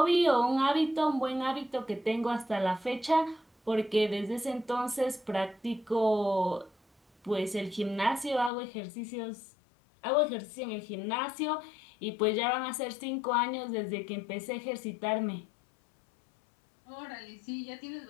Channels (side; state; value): right; drops out; at 8.5 s